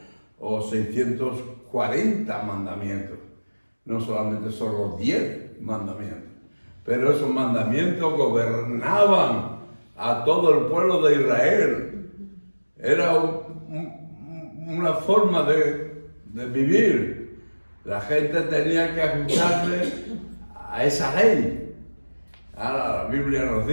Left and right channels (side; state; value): both; inverted; correlation -1.00